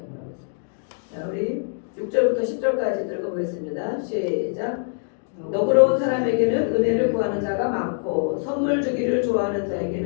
말하고 있어요. 자, 우리 6절부터 10절까지 읽어보겠습니다. 시작. 너그러운 사람에게는 은혜를 구하는 자가 많고 선물 주기를 좋아하는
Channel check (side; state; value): right; silent; digital silence